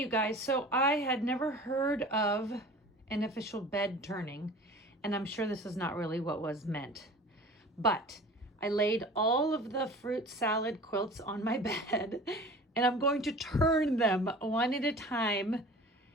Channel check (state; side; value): normal; both; correlation 0.41